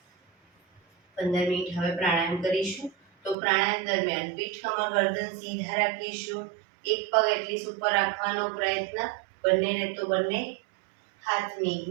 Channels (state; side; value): drops out; left; at 3.4 s